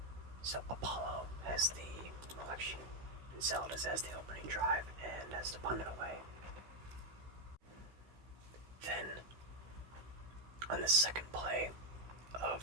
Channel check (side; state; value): left; late; 16 ms